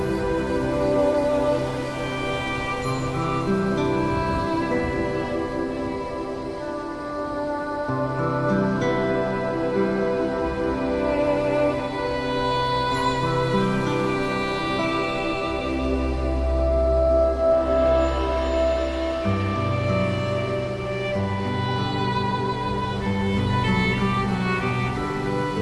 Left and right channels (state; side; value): identical; both; correlation 1.00